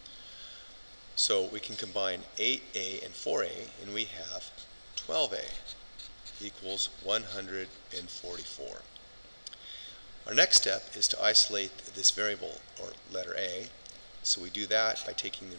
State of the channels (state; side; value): inverted; both; correlation -1.00